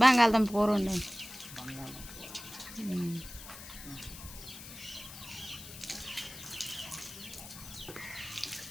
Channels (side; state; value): left; noise; hiss, 13 dB below the sound